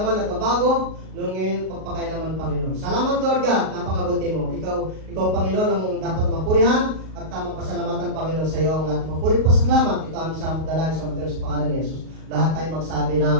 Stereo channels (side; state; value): left; late; 38 ms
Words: nagbabago, noon ngayon pagpakailaman, Panginoon. Salamat, Lord God, napakabuti mo. Ikaw, Panginoon, ang dapat mapurihan at tamang pasalamatan, Panginoon, sa iyo ang lahat. Mapuri pasalamat. Ito ang samot dalangin sa pangalan ni Jesus. Lahat tayo magsabi